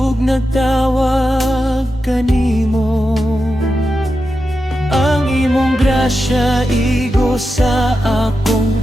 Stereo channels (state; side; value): normal; both; correlation 0.89